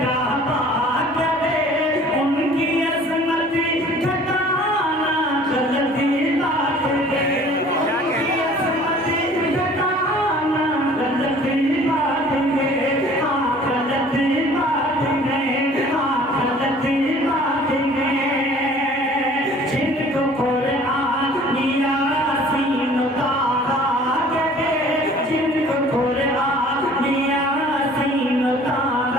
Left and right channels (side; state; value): both; normal; correlation 0.51